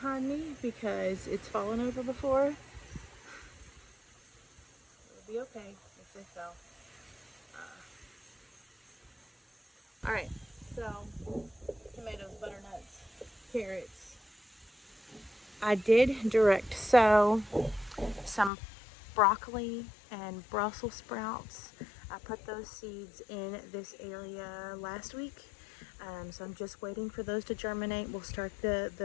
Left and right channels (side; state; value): right; drops out; at 18.5 s